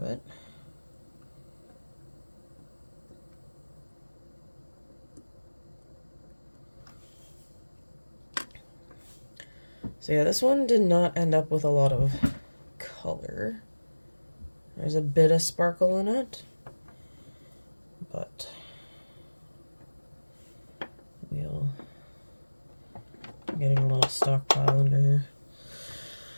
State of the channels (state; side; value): inverted; both; correlation -1.00